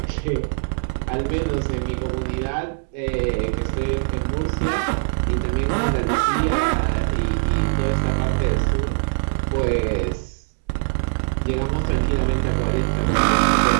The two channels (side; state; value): left; silent; digital silence